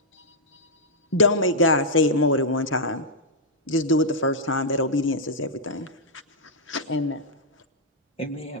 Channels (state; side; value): normal; both; correlation -0.07